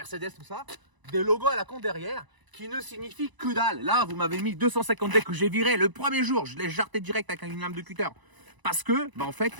tout ça, des logos à la con derrière qui ne signifient que dalle. Là, vous m'avez mis 250D que j'ai viré le premier jour. Je l'ai jarté direct avec une lame de cutter. Parce que, en fait,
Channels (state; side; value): late; left; 1.0 ms